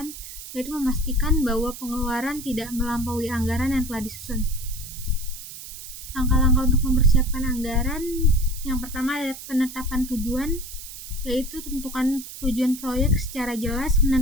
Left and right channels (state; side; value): noise; right; hiss, 12 dB below the sound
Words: yaitu memastikan bahwa pengeluaran tidak melampaui anggaran yang telah disusun. Langkah-langkah untuk mempersiapkan anggaran, yang pertama ada penetapan tujuan, yaitu tentukan tujuan proyek secara jelas,